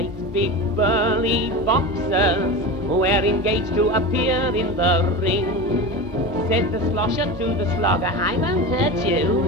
big burly boxers were engaged to appear in the ring. Said the slosher to the slogger, I won't hurt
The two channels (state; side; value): normal; both; correlation 0.26